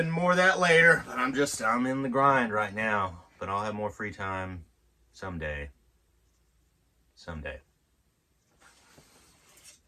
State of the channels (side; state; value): both; identical; correlation 1.00